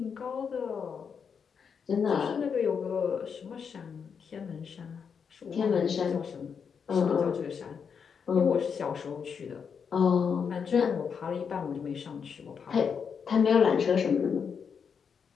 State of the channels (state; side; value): quieter; right; 6.5 dB